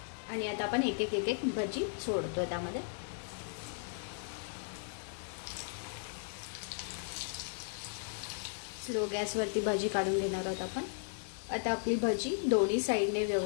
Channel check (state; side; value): silent; right; digital silence